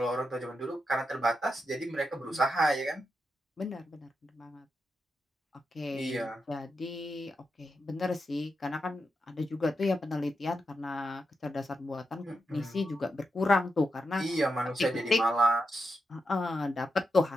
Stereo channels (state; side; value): normal; both; correlation 0.86